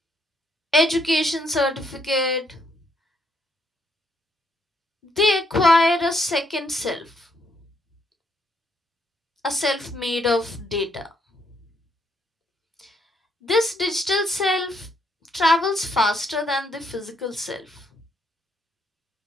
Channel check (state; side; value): normal; both; correlation 0.73